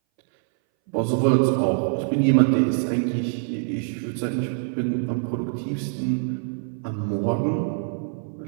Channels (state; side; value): silent; left; 60 dB below the other